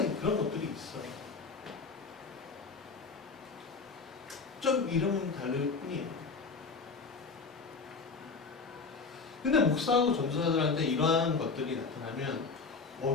그런 것들이 있어요. 좀 이름은 다를 뿐이에요. 근데 목사하고 전도사들한테 이러한 것들이 나타나면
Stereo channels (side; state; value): right; quieter; 4.6 dB